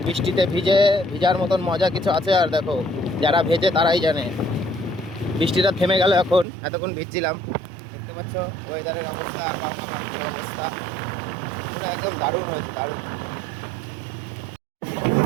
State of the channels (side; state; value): left; drops out; at 6.5 s